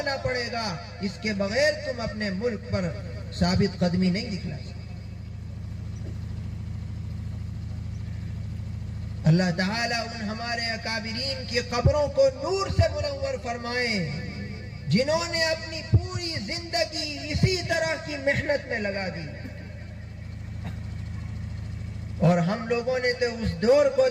پڑے گا، اس کے بغیر تم اپنے ملک پر ثابت قدمی نہیں دکھلا سکتے۔ اللہ تعالیٰ ان ہمارے اکابرین کی قبروں کو نور سے منور فرمائے جنہوں نے اپنی پوری زندگی اسی طرح کی محنت میں لگا دی، اور ہم لوگوں نے تو اس دور کو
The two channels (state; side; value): identical; both; correlation 1.00